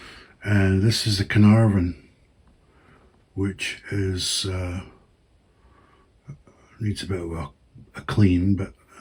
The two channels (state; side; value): identical; both; correlation 1.00